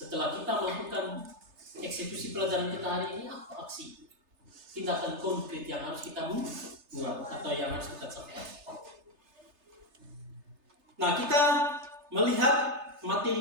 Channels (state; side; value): late; left; 3.3 ms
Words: kita melakukan eksekusi pelajaran kita hari ini, apa aksi tindakan konkret yang harus kita buat atau yang harus kita capai. Nah, kita melihat